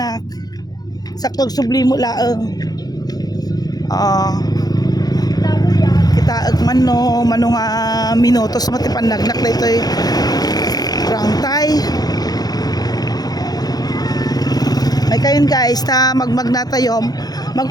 Saktog sublimo laeng. Kita man no manong minutos mati panagnak na ito'y rangtay. May kayon guys ta magmagnatayom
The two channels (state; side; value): late; right; 0.19 ms